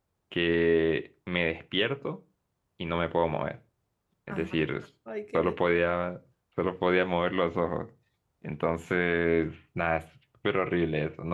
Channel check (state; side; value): identical; both; correlation 1.00